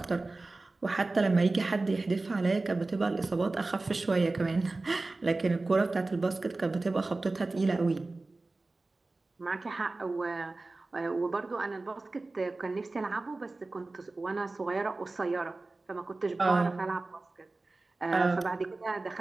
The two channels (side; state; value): left; quieter; 3.3 dB